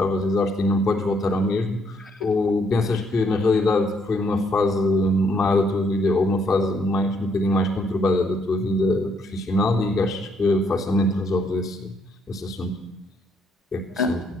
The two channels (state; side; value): normal; both; correlation 0.71